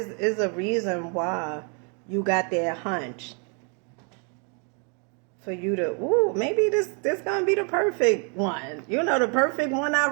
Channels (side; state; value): left; quieter; 37.7 dB